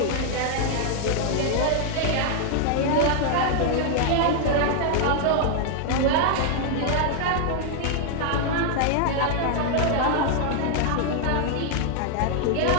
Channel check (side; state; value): both; different; correlation 0.00